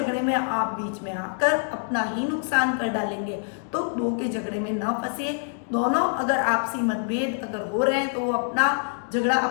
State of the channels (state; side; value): silent; right; 61 dB below the other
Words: में आप बीच में आकर अपना ही नुकसान कर डालेंगे। तो दो के झगड़े में न फंसिए, दोनों अगर आपसी मतभेद अगर हो रहे हैं तो वो अपना झगड़ा